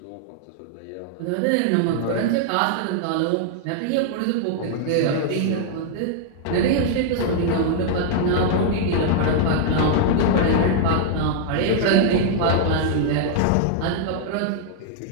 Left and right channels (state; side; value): different; both; correlation -0.01